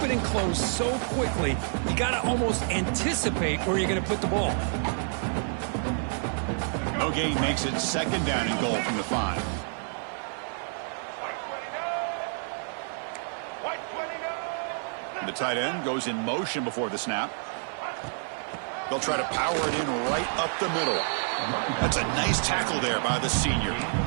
and close so quickly. You got to almost anticipate where you're going to put the ball. No gain makes it 2nd down and goal from the 5. The tight end goes in motion before the snap. They'll try to power it in right up the middle. That's a nice tackle there by the senior.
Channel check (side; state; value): left; silent; 59 dB below the other